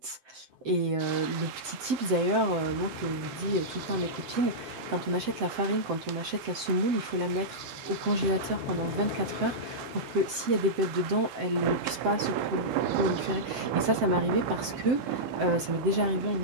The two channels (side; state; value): left; late; 7.7 ms